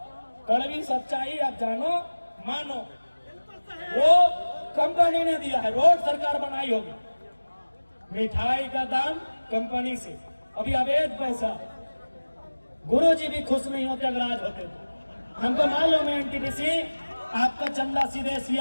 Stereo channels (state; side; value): inverted; both; correlation -1.00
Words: कड़वी सच्चाई आप जानो मानो, वो कंपनी ने दिया है। रोड सरकार बनाई होगी, मिठाई का दाम कंपनी से। अभी अवैध पैसा, गुरुजी भी खुश नहीं होते अगर आज होते तो। हमको मालूम है एनटीपीसी आपका चंदा सीधे